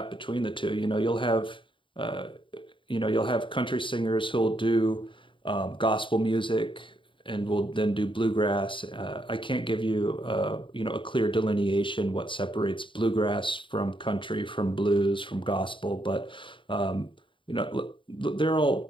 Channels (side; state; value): right; late; 0.24 ms